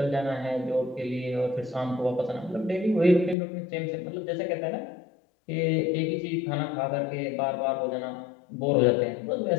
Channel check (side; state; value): right; drops out; at 3.4 s